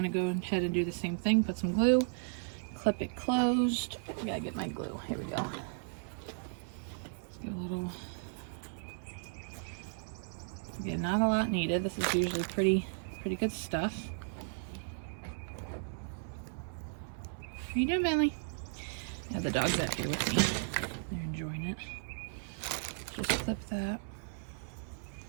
to go ahead and do the same thing. Put some glue, clip it closed. I gotta get my glue. Here we go. Let's get a little. Again, not a lot needed. This is usually pretty good stuff. How you doing, Bentley? I have the dogs out here with me. They're enjoying it. Just clip that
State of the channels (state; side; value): silent; left; 54 dB below the other